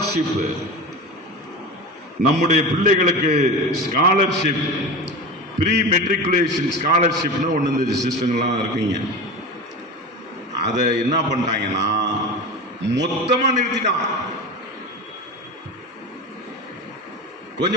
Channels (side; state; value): both; normal; correlation 0.27